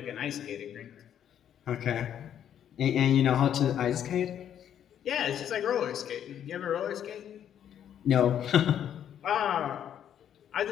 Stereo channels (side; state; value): right; quieter; 9.7 dB